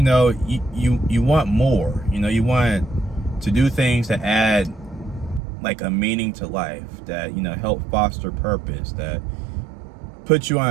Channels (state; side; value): drops out; left; at 5.4 s